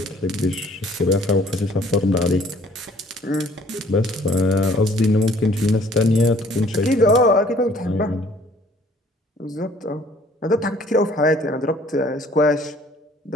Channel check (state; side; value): normal; both; correlation 0.57